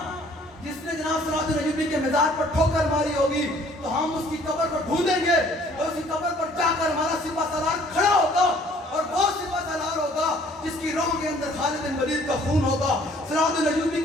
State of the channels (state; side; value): normal; both; correlation 0.58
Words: جس نے جناب صلاح الدین ایوبی کے مزار پر ٹھوکر ماری ہوگی تو ہم اس کی قبر پر ڈھونڈیں گے اور اس کی قبر پر جا کر ہمارا سپہ سالار کھڑا ہوگا اور وہ سپہ سالار ہوگا جس کی روح کے اندر خالد بن ولید کا خون ہوگا, صلاح الدین ایوبی